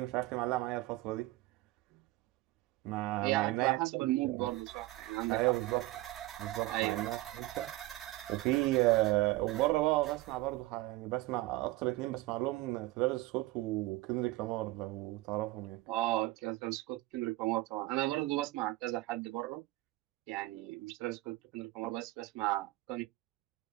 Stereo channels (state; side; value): quieter; left; 18.8 dB